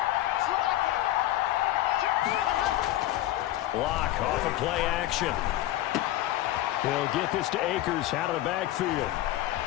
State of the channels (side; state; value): right; quieter; 14.9 dB